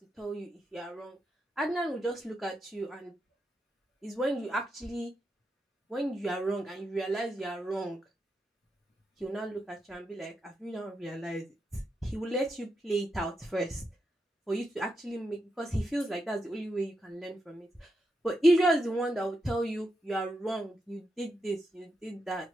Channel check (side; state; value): both; normal; correlation 0.85